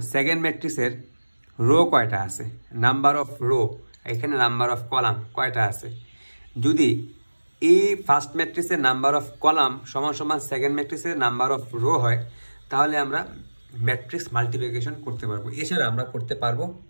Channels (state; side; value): inverted; both; correlation -1.00